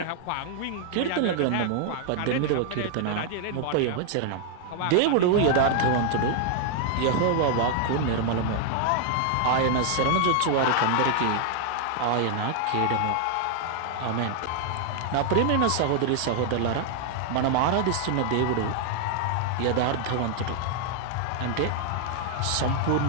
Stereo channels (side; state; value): both; different; correlation 0.00